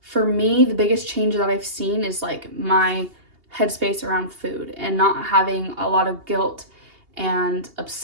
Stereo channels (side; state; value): left; late; 2.8 ms